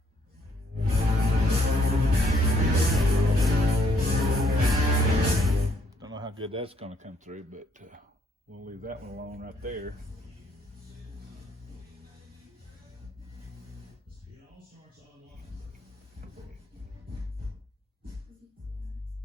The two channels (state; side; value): normal; both; correlation 0.68